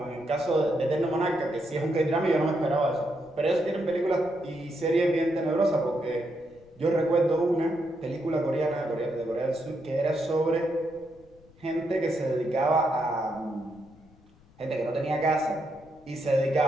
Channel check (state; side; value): noise; left; rumble, 27 dB below the sound